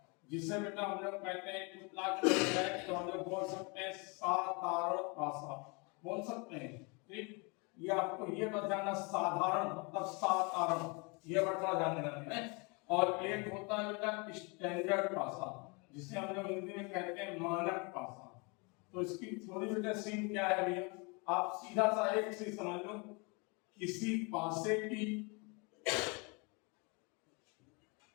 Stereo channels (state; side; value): quieter; right; 30.8 dB